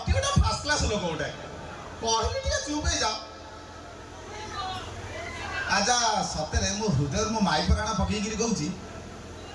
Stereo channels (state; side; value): identical; both; correlation 1.00